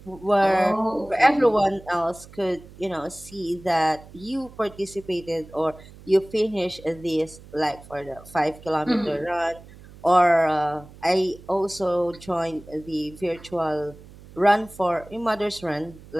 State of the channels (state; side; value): noise; right; hum, 20 dB below the sound